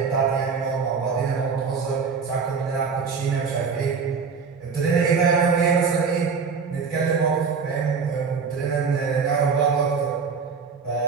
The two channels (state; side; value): quieter; left; 5.5 dB